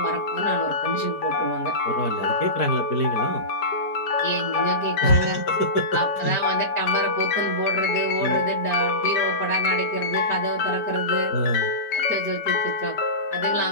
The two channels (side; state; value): right; late; 4.6 ms